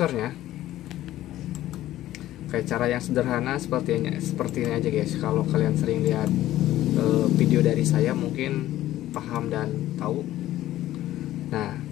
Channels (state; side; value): quieter; right; 14.2 dB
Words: Kayak cara yang sederhana seperti ini aja guys. Kalau kalian sering lihat video dari saya mungkin paham dan tahu. Nah,